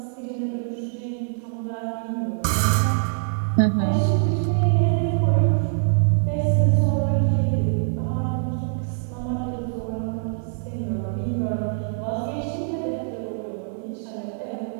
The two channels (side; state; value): left; silent; 63 dB below the other